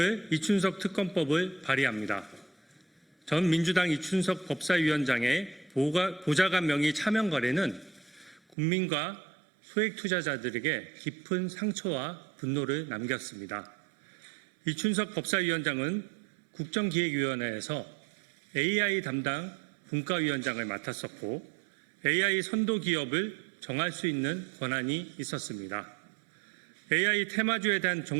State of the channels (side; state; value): left; drops out; at 8.6 s